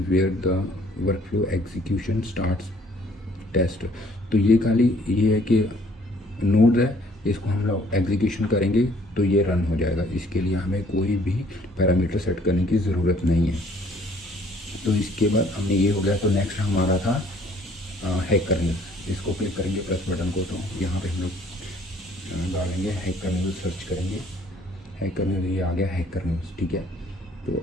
where the work flow execution starts test. तो ये खाली ये है कि नोड है, इसको हम लोग एग्जीक्यूशन करेंगे तो ये रन हो जाएगा। इसके लिए हमें कोई भी पैरामीटर सेट करने की ज़रूरत नहीं है। तो इसके बाद हमने ये हो गया। तो नेक्स्ट हमारा था हैकर न्यूज़। इसको क्लिक करेंगे प्लस बटन को, तो यहाँ पे हम लोग डालेंगे हैकर न्यूज़, सर्च करेंगे हैकर न्यूज़, ये आ गया हैकर न्यूज़। ठीक है,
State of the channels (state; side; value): normal; both; correlation 0.60